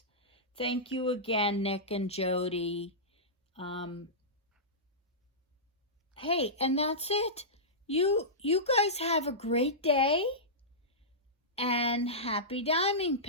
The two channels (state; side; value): normal; both; correlation -0.16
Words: Thank you again, Nick and Jody. Hey, and that's it. You guys have a great day and happy diamond